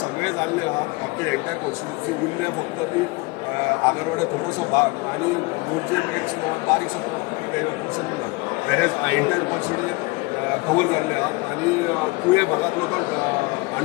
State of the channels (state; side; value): quieter; right; 25.1 dB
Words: जाल्ले आहा. आमचे एंटायर कॉन्स्टिट्युन्सी उरले फक्त ती आगरवाडे थोडोसो भाग आनी मोरजे बारीकसो पोर्शन ना. वेरेज एंटायर कॉन्स्टिट्युन्सी कवर जाल्ले आहात आनी तुये भागांतलो तो